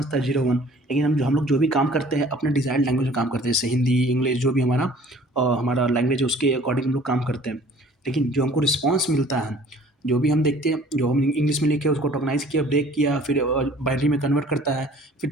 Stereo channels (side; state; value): both; normal; correlation 0.52